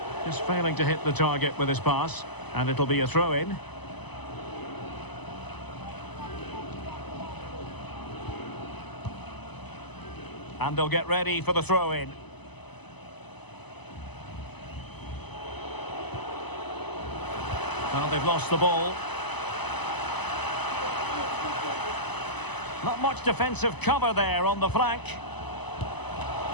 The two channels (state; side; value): late; right; 0.99 ms